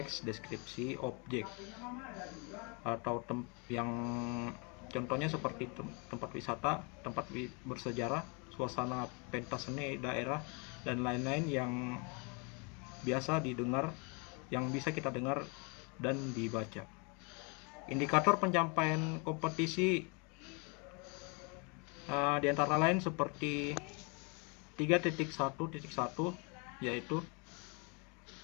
deskripsi objek atau yang contohnya seperti tempat wisata, tempat bersejarah, suasana pentas seni daerah, dan lain-lain yang biasa didengar, yang bisa kita dengar dan dibaca. Indikator pencapaian kompetisi di antara lain seperti 3.1.1, yaitu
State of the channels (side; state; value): right; quieter; 33.0 dB